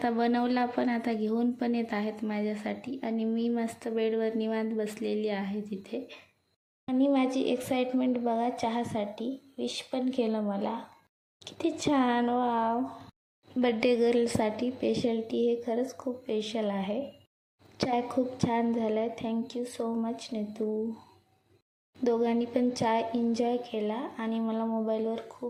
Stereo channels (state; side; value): identical; both; correlation 1.00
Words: बनवला पण, आता घेऊन पण येत आहेत माझ्यासाठी. आणि मी मस्त बेडवर निवांत बसलेली आहे तिथे. आणि माझी एक्साइटमेंट बघा चहासाठी. विश पण केलं मला. किती छान. वाव. बड्डे गर्लसाठी स्पेशल टी हे खरंच खूप स्पेशल आहे. चाय खूप छान झाला आहे. Thank you so much Neetu. दोघांनी पण चाय एन्जॉय केला आणि मला मोबाईलवर